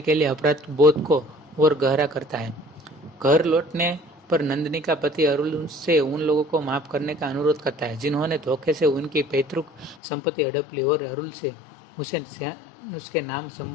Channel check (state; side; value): drops out; right; at 10.0 s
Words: के लिए अपराध बोध को और गहरा करता है। घर लौटने पर नंदिनी का पति अरुल से उन लोगों को माफ करने का अनुरोध करता है जिन्होंने धोखे से उनकी पैतृक संपत्ति हड़प ली और अरुल से उसे उसके नाम